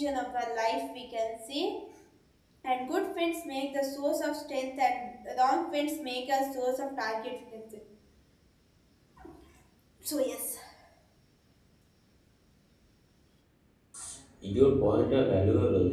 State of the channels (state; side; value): identical; both; correlation 1.00